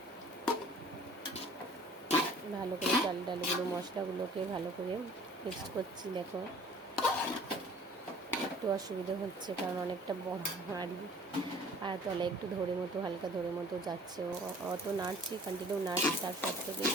চাল ডালগুলো মশলাগুলোকে ভালো করে মিক্সড করছি। দেখো একটু অসুবিধা হচ্ছে, কারণ অনেকটা বড় হাঁড়ি আর তলায় একটু হালকা ধরে মতো যাচ্ছে। অত নাড়ছি, কন্টিনিউ নাড়ছি, তার সত্ত্বেও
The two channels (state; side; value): normal; both; correlation 0.50